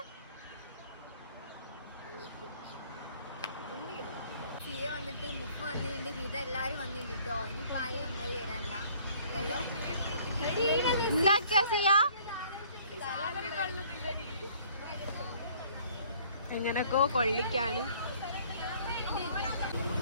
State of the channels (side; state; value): both; inverted; correlation -0.57